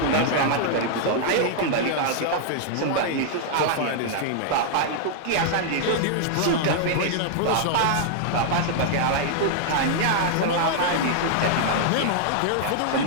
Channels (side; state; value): both; different; correlation -0.01